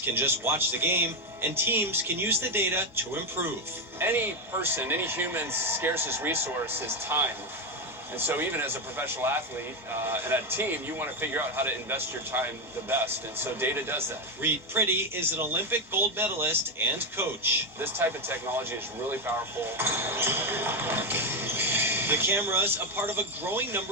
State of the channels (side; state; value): both; normal; correlation 0.09